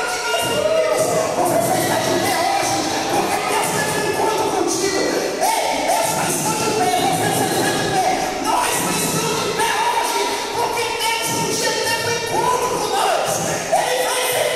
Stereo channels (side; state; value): both; identical; correlation 1.00